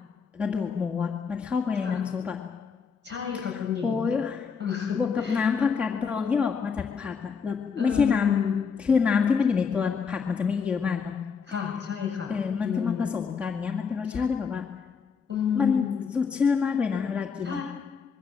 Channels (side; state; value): right; quieter; 5.9 dB